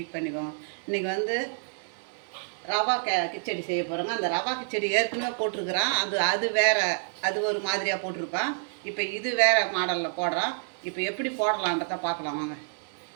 பண்ணிக்கோங்க. இன்றைக்கி வந்து ரவா கிச்சடி செய்ய போகிறோங்க. அந்த ரவா கிச்சடி ஏற்கனவே போட்டிருக்குறான். அது வேறு, அது ஒரு மாதிரியாக போட்டிருப்பான். இப்போ இது வேறு மாடலில் போடுறான். இப்போ எப்படி போடலான்றத பார்க்கலாம் வாங்க.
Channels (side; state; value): left; silent; 59 dB below the other